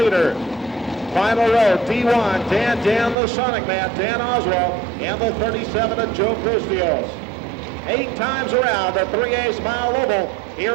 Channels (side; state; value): left; drops out; at 3.2 s